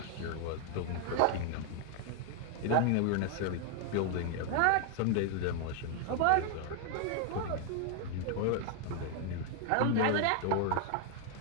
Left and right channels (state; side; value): different; both; correlation 0.00